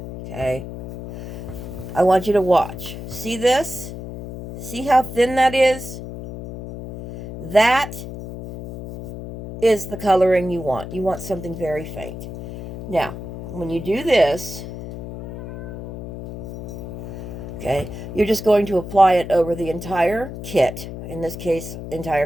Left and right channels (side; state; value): left; noise; hum, 10 dB below the sound